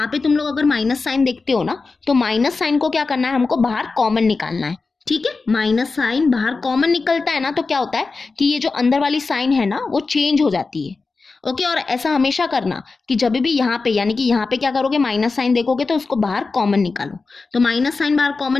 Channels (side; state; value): right; quieter; 4.1 dB